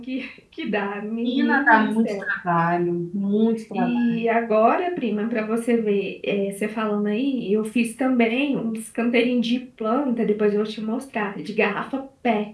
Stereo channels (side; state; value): both; identical; correlation 1.00